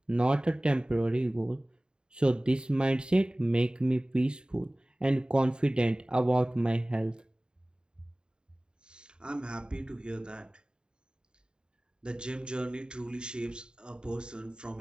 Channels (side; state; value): left; late; 0.049 ms